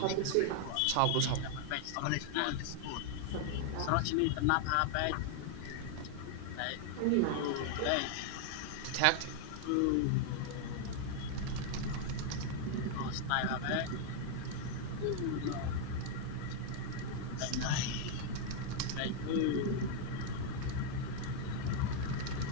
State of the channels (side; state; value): both; different; correlation 0.00